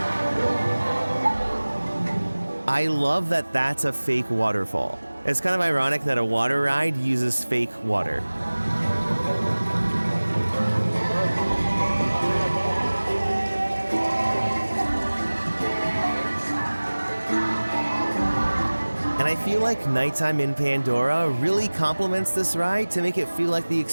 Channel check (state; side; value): inverted; both; correlation -1.00